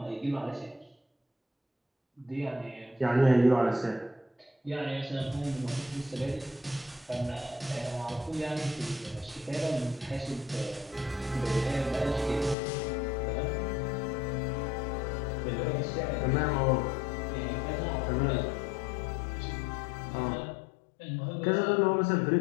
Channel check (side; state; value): right; drops out; at 12.6 s